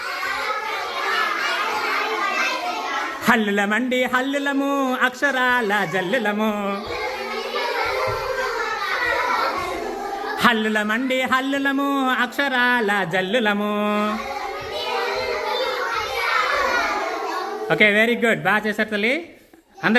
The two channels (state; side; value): identical; both; correlation 1.00